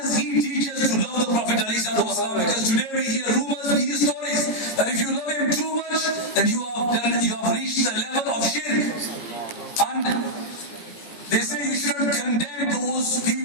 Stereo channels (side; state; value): right; late; 18 ms